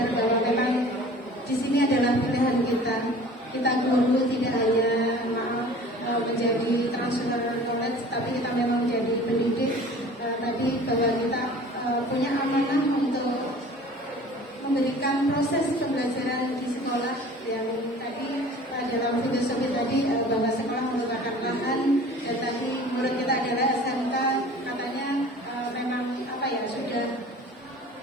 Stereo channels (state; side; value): normal; both; correlation 0.45